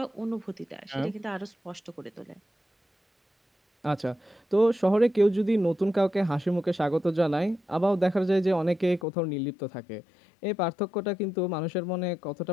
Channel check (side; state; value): right; drops out; at 9.1 s